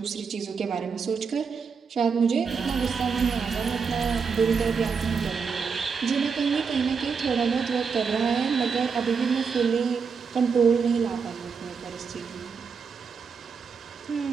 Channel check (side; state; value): left; quieter; 5.7 dB